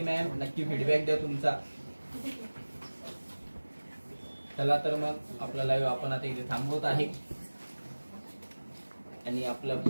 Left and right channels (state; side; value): inverted; both; correlation -1.00